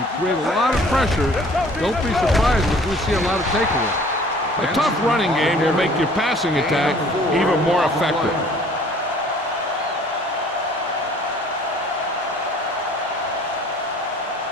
create a lot of pressure, don't be surprised if we see a lot of takeaways. A tough running game will make your passing attack even more effective.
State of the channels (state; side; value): normal; both; correlation 0.53